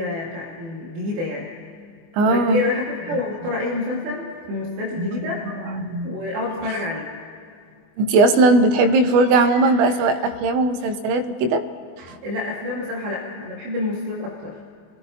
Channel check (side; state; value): left; late; 24 ms